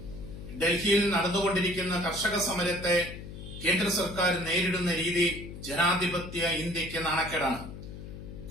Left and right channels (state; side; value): noise; left; hum, 11 dB below the sound